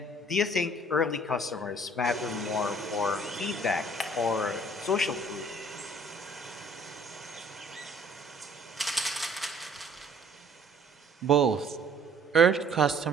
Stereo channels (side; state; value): both; normal; correlation 0.56